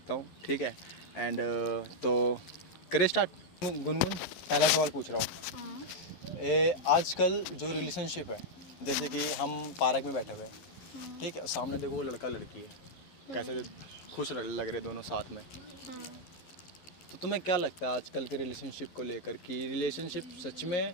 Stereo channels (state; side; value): late; right; 11 ms